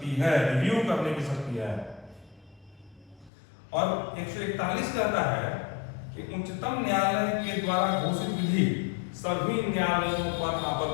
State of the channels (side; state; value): right; drops out; at 3.3 s